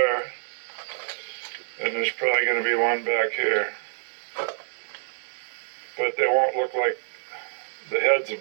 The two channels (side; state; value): left; silent; digital silence